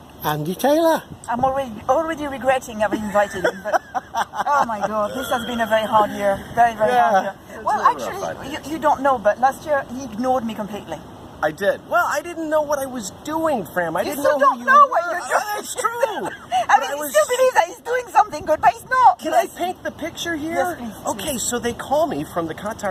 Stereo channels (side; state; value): both; identical; correlation 1.00